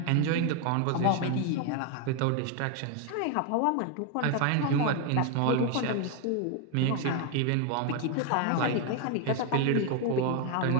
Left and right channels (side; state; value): both; different; correlation 0.01